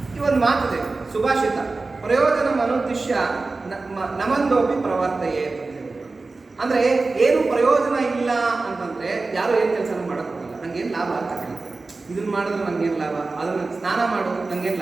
ಈ ಒಂದು ಮಾತಿದೆ, ಸುಭಾಷಿತ, ಪ್ರಯೋಜನ ಮನುದ್ದಿಶ್ಯ ನಮಂದೋಪಿ ಪ್ರವರ್ತಯೇ ಅಂತ ಹೇಳ್ಬಿಟ್ಟು. ಅಂದ್ರೆ ಏನು ಪ್ರಯೋಜನ ಇಲ್ಲ ಅಂತಂದ್ರೆ ಯಾರು ಏನ್ ಕೆಲಸ ಮಾಡಕ್ ಹೋಗಲ್ಲ. ನಂಗೇನು ಲಾಭ ಅಂತ ಕೇಳ್ತಾರೆ. ಇದನ್ನ ಮಾಡಿದ್ರೆ ನಂಗೇನು ಲಾಭ, ಅದನ್ನ ಸ್ನಾನ ಮಾಡೋದು ನಂಗೇನು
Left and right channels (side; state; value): left; quieter; 3.6 dB